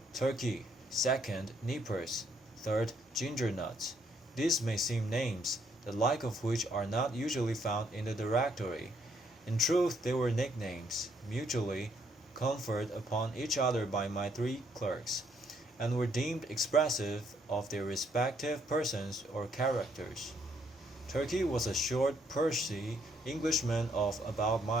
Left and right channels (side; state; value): both; normal; correlation 0.70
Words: Turkey; second, Nippers; third, Ginger Nuts. These may seem names, the like of which are not usually found in the directory. In truth, they were nicknames, mutually conferred upon each other by my three clerks, and were deemed expressive of their respective persons or characters. Turkey was a short, pursy Englishman of about